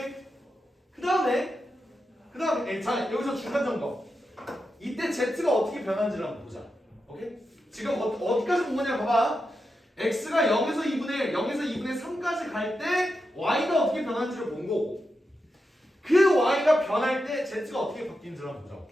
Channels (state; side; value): normal; both; correlation 0.88